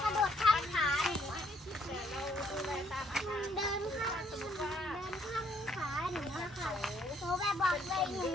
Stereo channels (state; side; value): normal; both; correlation 0.68